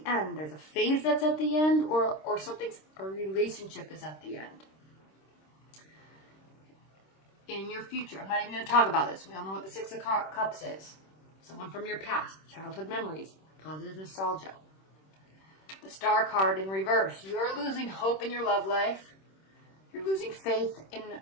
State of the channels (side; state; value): right; late; 26 ms